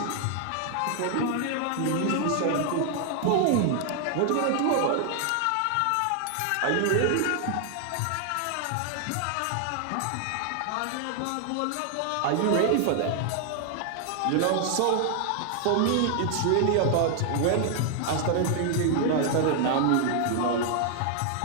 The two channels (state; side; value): different; both; correlation 0.00